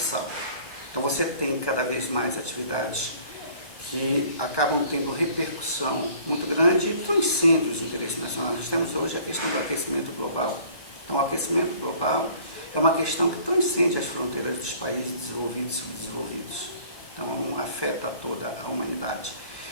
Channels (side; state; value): right; late; 1.2 ms